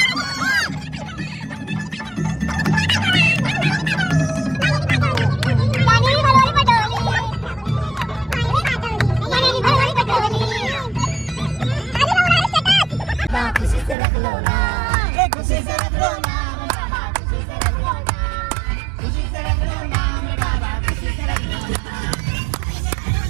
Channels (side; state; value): left; drops out; at 14.0 s